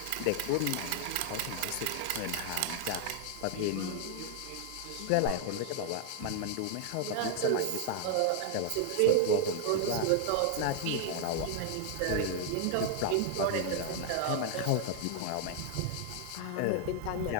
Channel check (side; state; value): both; different; correlation 0.00